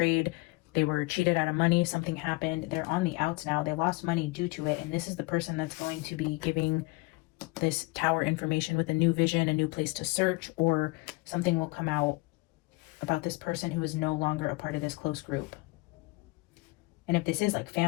They were cheated out of money. Something happened. They're on the outs now. They lost money due to it. And this is the person that's going to be giving this tower information with a new vision, a new place to search, or something will come out about this person who is no longer a part of this close group. And if this is like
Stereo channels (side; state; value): right; quieter; 24.7 dB